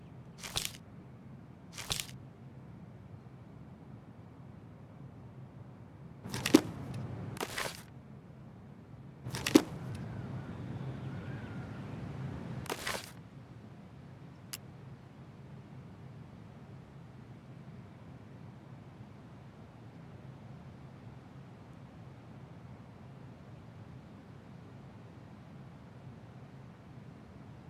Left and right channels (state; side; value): identical; both; correlation 1.00